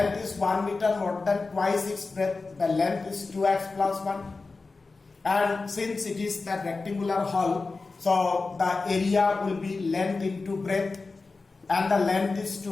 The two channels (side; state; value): right; quieter; 3.9 dB